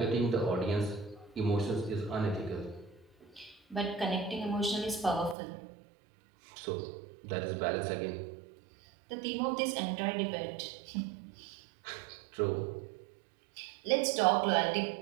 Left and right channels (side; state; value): left; drops out; at 5.4 s